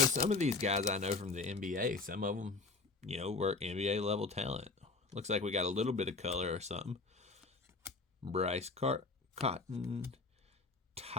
of these guys I know from the NBA, some of them, you know, were NBA level talent. Looks like we got a little bit of color or something. Bryce Cotton,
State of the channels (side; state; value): right; quieter; 3.8 dB